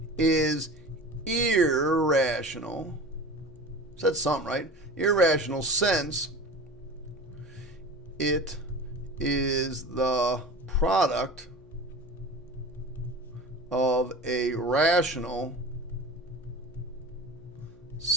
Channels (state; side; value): noise; right; hum, 28 dB below the sound